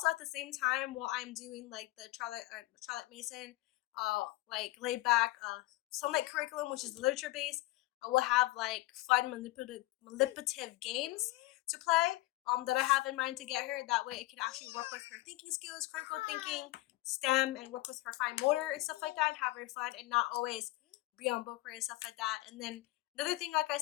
at the same time while I'm doing like the Charlotte Mason like laid back sunlight curriculum, which is literature based, I will have like fun manipulative games to play that I have in mind to get her. That way it can actually work with her thinking skills, critical thinking, STEM, and work with her fine motor and stuff like that, and have her fun and not always be on book and stuff like that. And then another thing, like I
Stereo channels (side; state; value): right; quieter; 19.1 dB